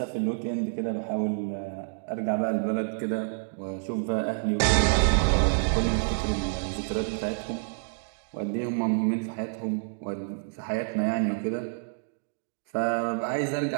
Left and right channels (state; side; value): silent; left; digital silence